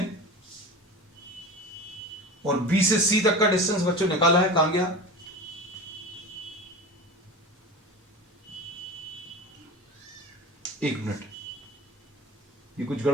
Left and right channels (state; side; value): normal; both; correlation 0.31